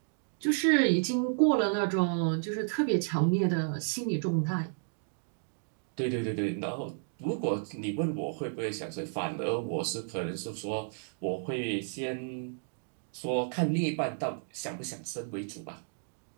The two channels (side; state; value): left; silent; digital silence